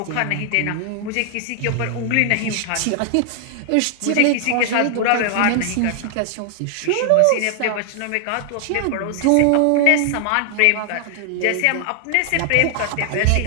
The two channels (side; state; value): both; different; correlation 0.00